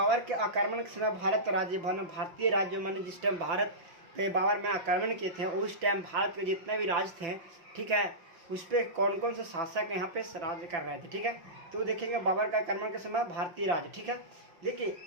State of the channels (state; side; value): late; left; 5.6 ms